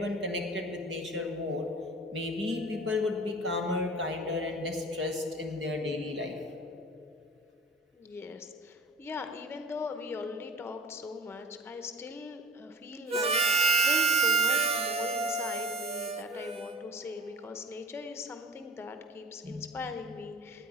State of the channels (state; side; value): normal; both; correlation 0.41